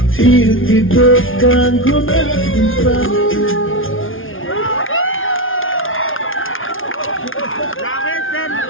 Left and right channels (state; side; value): late; right; 0.58 ms